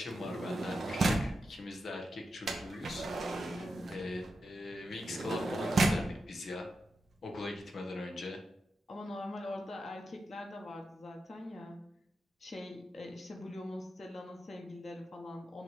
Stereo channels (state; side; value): normal; both; correlation 0.88